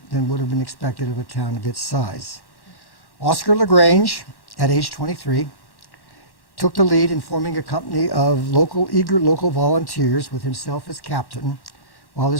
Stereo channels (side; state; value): right; late; 1.1 ms